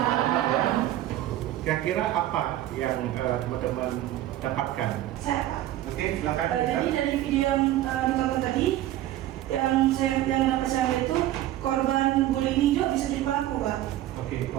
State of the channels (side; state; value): left; quieter; 13.9 dB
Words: Kira-kira apa yang teman-teman dapatkan? Saya Pak. Oke, silakan. Jadi dari video yang ditonton tadi, yang dapat saya lihat itu korban bullying ini juga bisa jadi pelaku Pak. Oke,